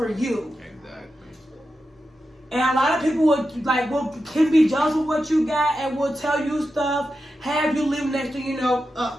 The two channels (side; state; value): both; normal; correlation 0.90